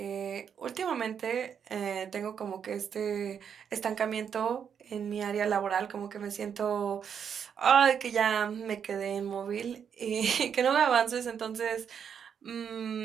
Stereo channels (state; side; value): quieter; left; 7.6 dB